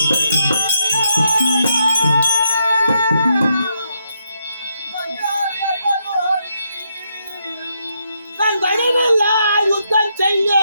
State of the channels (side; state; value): both; inverted; correlation -0.78